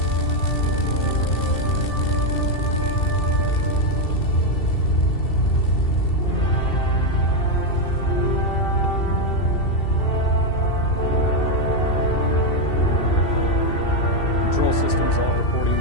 Control systems all reporting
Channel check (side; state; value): right; late; 2.7 ms